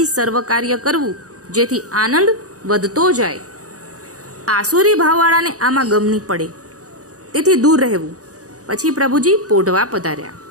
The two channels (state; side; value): late; left; 0.67 ms